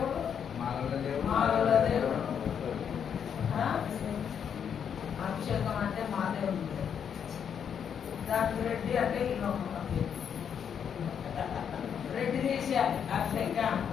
మానవుల దేవుడు. అభిషేకం అంటే మా దేవుడు. దానికి రెడ్డి అంటే ఇల్లు రెడ్డి తీసేయాలి. అభిషేకం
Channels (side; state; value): right; quieter; 7.9 dB